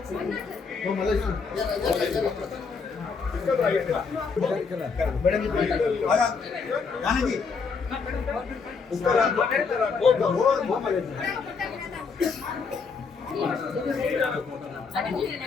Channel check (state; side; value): quieter; right; 5.1 dB